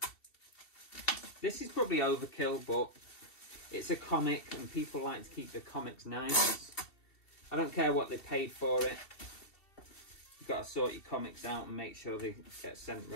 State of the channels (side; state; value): right; late; 2.7 ms